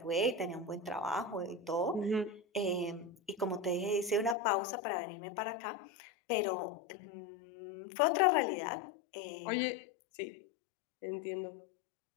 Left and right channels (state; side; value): drops out; right; at 4.4 s